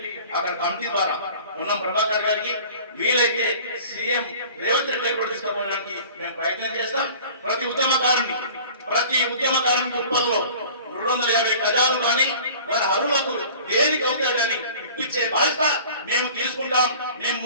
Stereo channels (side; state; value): both; inverted; correlation -0.45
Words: అక్కడ కమిటీ ద్వారా ఉన్న ప్రభాకర్ గారికి వీలైతే సీఎం రేవంత్ రెడ్డి గారు కూడా తీసుకుపోవడానికి మేము ప్రయత్నం చేస్తాం. ప్రతి ఉద్యమకారునికి ఉప్పల్లో 250 గజాలు కానీ వారి అరువులకు దేనికి అవుతాడని ఇప్పించే బాధ్యత మేము తీసుకుంటాం. మేము